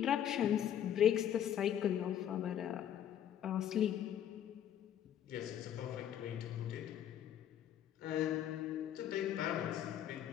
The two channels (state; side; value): quieter; right; 10.2 dB